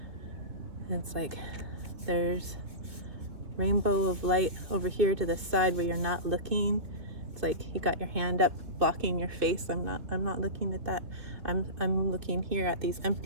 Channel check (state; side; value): late; left; 2.9 ms